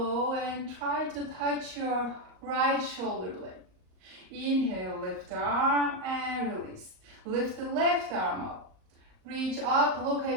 and try to touch your right shoulder blade. Inhale, lift the arm and release. Lift the left arm up. Reach up, look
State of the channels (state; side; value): late; left; 38 ms